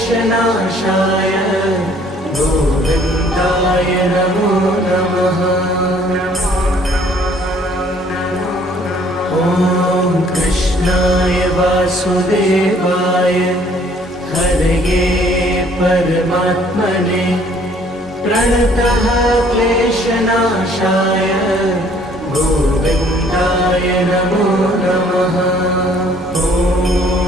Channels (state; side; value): normal; both; correlation 0.59